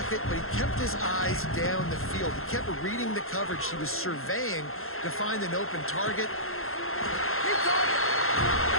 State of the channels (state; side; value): late; right; 0.61 ms